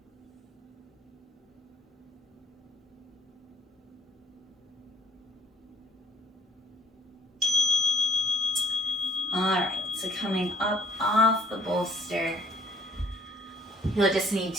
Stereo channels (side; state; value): both; normal; correlation 0.58